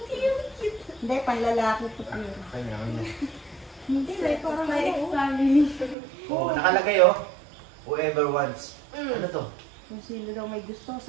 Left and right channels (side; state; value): left; drops out; at 6.0 s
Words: Hindi, panlalaki po yun. Kanya. Hindi, like, parang family. Oo, nakalagay oh. Whoever wants. Ano to? Kung sino daw may gusto.